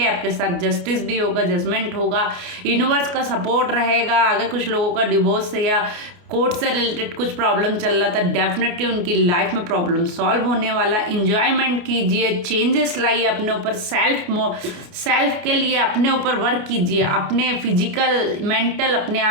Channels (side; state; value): left; late; 28 ms